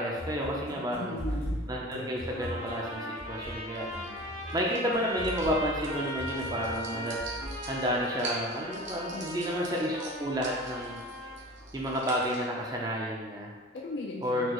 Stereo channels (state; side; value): normal; both; correlation 0.38